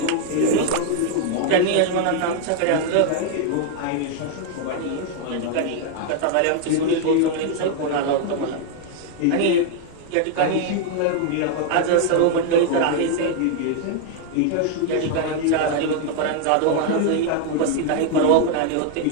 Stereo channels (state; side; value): different; both; correlation 0.00